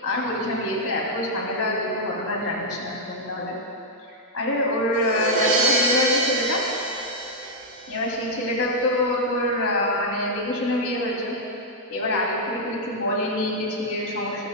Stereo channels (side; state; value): both; normal; correlation -0.04